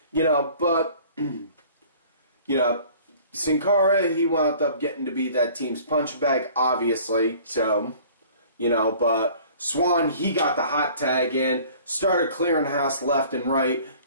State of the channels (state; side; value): inverted; both; correlation -0.50